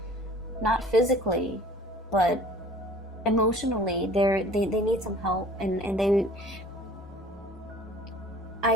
Not physically, but emotionally. They need some help. And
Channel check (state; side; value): normal; both; correlation 0.48